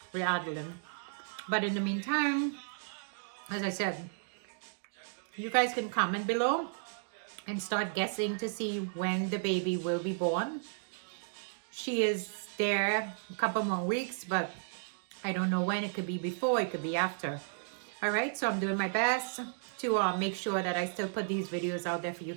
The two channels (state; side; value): silent; left; digital silence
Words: with Adeline. But in the meantime, as I said, you guys can comment below and start guessing to see when the baby will be born. She is there a couple more weeks, but I don't know when. It could be before, it could be after. All right, so I'm doing my best to make sure that I still put these videos out there for you